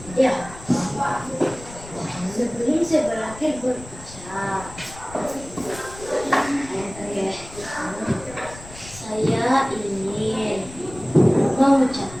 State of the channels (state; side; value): noise; left; rumble, 17 dB below the sound